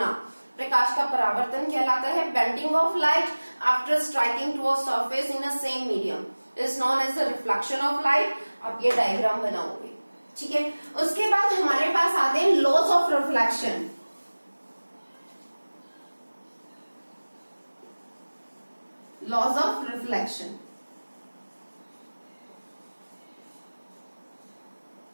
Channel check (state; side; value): inverted; both; correlation -1.00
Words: प्रकाश का परावर्तन कहलाता है। Bending of light after striking to a surface in a same medium is known as the reflection of light. आप ये डायग्राम बनाओगे। ठीक है, उसके बाद हमारे पास आते हैं laws of reflection. Laws of reflection,